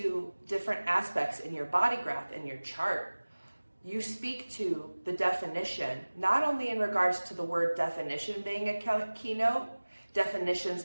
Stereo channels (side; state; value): both; inverted; correlation -1.00